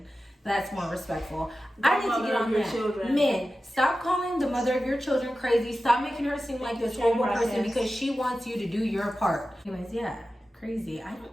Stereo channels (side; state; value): both; normal; correlation 0.94